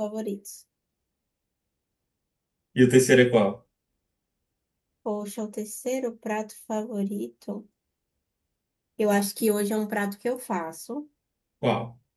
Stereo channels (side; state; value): both; identical; correlation 1.00